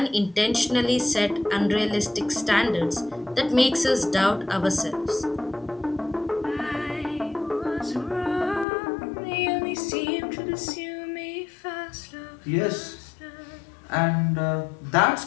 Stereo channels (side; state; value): right; drops out; at 8.7 s